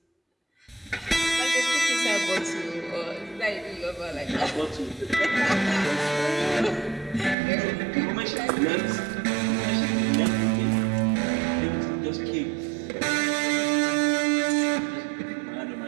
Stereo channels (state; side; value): drops out; left; at 7.4 s